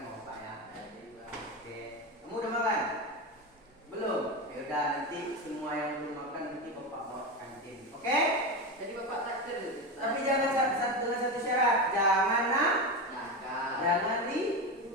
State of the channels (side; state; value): both; normal; correlation 0.18